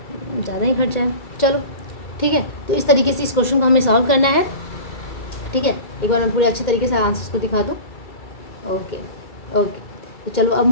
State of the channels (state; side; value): late; right; 2.3 ms